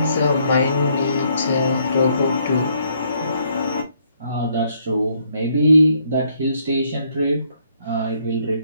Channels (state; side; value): inverted; both; correlation -0.69